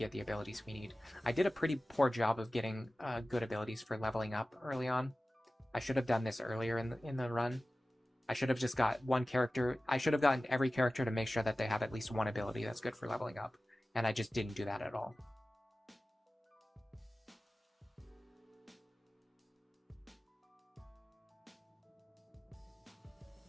the abilities we need. I did a pretty poor job of getting good abilities for leveling up early on. I should have done this earlier in the run. I should have just got one character. I should have gotten every character to make sure that they have at least one ability that's good for leveling up. And I just didn't do that at all.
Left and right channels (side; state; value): both; normal; correlation 0.96